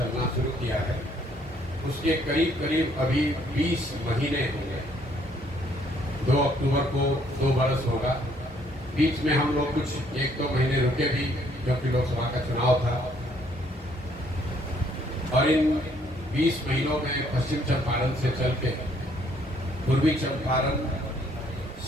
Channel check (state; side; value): normal; both; correlation 0.65